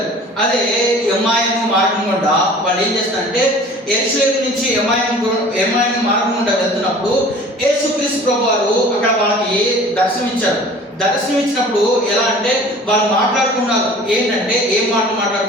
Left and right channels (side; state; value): both; normal; correlation 0.46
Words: అదే ఎమ్మాయిము మార్గం గుండా వాళ్ళు ఏం చేస్తారంటే, యెరూషలేము నుంచి ఎమ్మాయిము మార్గం గుండా వెళ్తున్నప్పుడు యేసుక్రీస్తు ప్రభు వారు అక్కడ వాళ్ళకి దర్శనమిచ్చినప్పుడు ఎలా అంటే, వాళ్ళు మాట్లాడుకున్నారు. ఏంటంటే, ఏం